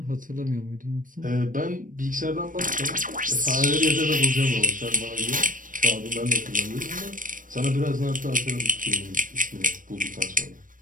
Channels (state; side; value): late; left; 0.39 ms